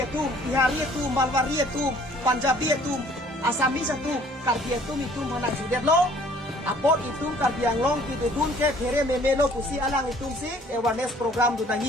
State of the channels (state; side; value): normal; both; correlation 0.56